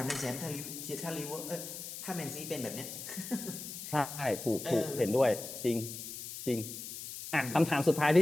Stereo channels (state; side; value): noise; left; hiss, 9 dB below the sound